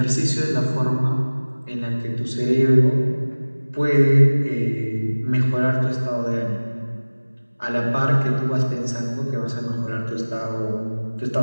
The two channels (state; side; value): inverted; both; correlation -1.00